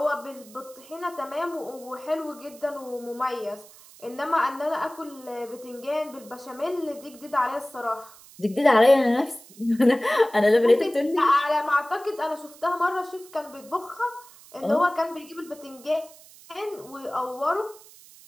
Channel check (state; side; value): noise; right; hiss, 22 dB below the sound